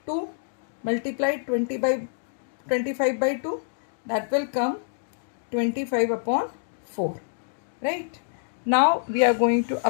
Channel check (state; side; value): silent; right; digital silence